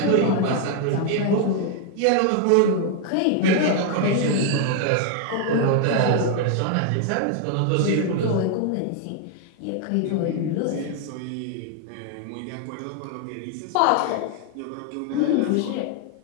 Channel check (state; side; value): different; both; correlation 0.00